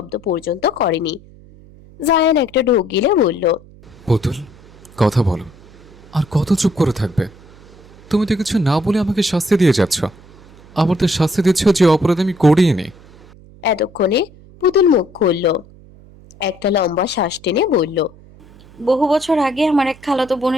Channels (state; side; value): noise; right; hum, 23 dB below the sound